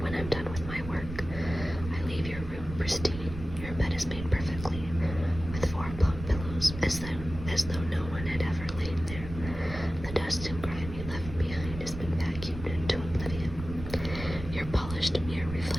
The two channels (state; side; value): noise; right; rumble, 9 dB below the sound